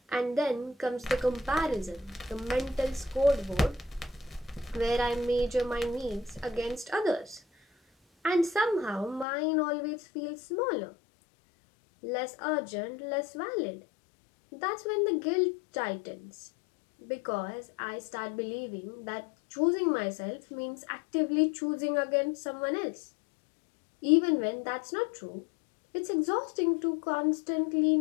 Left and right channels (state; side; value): drops out; right; at 9.2 s